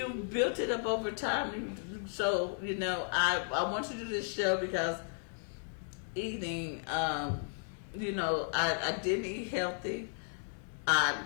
built it up over time. So I want to do this show because eating, I didn't eat healthy.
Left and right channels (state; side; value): silent; right; 55 dB below the other